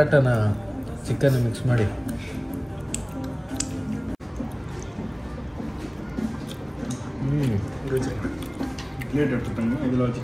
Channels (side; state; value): both; identical; correlation 1.00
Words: ಚಿಕನ್ ಮಿಕ್ಸ್ ಮಾಡಿ